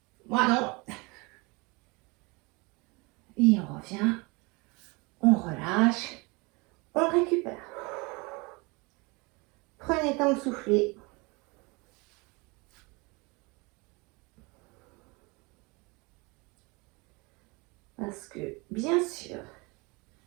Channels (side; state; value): left; quieter; 27.3 dB